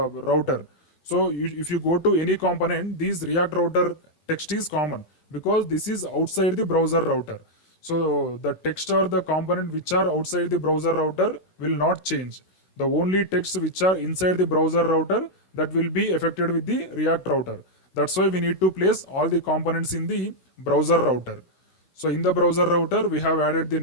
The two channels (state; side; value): late; right; 16 ms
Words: router. So if you go to any component, this React router text is common because this is outside the browser router. So the text or the component which are outside the browser router will not change. The only text which are inside the browser router, that will be affected with the React router. That's why we need to place all the components in the browser router. So in the browser router, we have added the